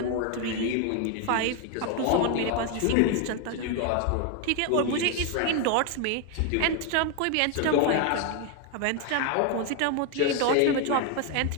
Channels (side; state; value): both; different; correlation 0.01